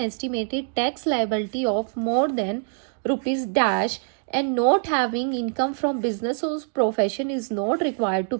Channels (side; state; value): left; silent; 61 dB below the other